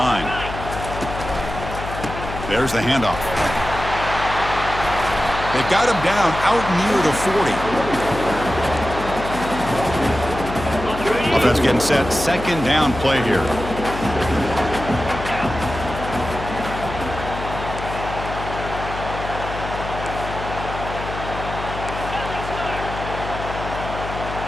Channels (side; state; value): left; noise; hum, 8 dB below the sound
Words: There's the handoff. They've got him down out near the 40. Offense getting set. 2nd down play here.